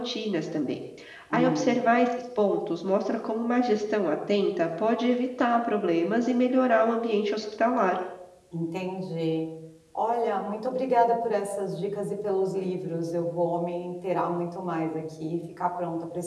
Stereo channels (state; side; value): identical; both; correlation 1.00